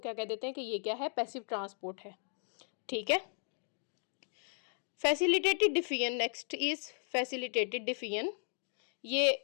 कह देते हैं कि ये क्या है, पैसिव ट्रांसपोर्ट है, ठीक है। Facilitated diffusion, next is facilitated diffusion.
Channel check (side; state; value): right; silent; 54 dB below the other